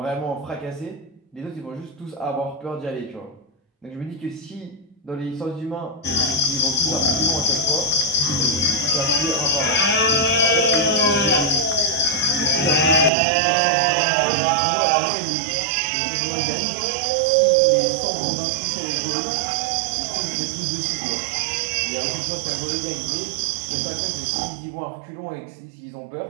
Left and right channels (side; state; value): left; drops out; at 13.1 s